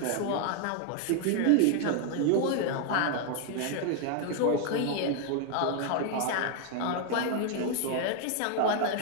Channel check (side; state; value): both; different; correlation 0.00